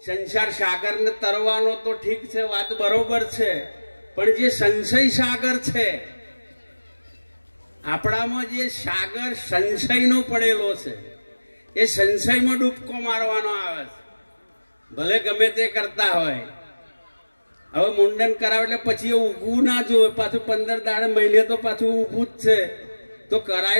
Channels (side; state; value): both; inverted; correlation -1.00